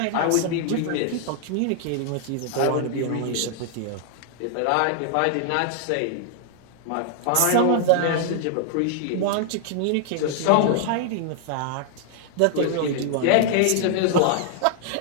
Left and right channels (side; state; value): both; different; correlation -0.01